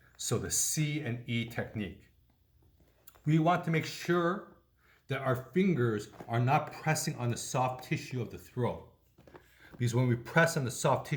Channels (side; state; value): both; identical; correlation 1.00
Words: So the C and E technique. We want to make sure that our fingers are not pressing on the soft tissue of the throat. Because when we press on the soft